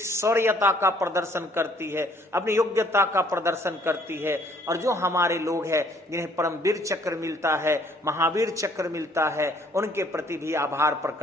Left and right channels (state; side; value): normal; both; correlation 0.61